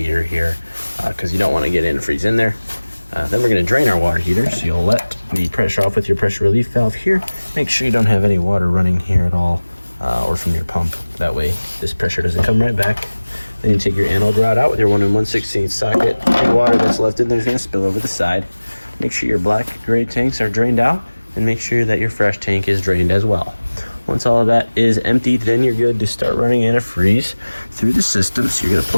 here, because you don't want to get antifreeze in there. Then we're going to drain our water heater, so you'll let the pressure off with your pressure relief valve here. Make sure you don't have any water running here at all, or from your pump. That way this pressure doesn't come right back. Then you take your anode rod out with your 1 1/16 socket. Any water that's left in there is going to spill over the side. Make sure your black gray tanks are drained out, and make sure that your fresh tank is drained as well. Once all of that is emptied, then you're good to start running antifreeze through the system. So you're going to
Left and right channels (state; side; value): inverted; both; correlation -1.00